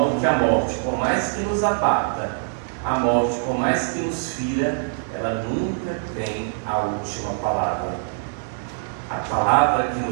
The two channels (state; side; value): silent; left; digital silence